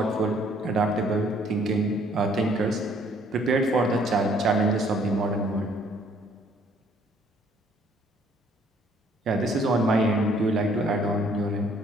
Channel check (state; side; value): normal; both; correlation 0.62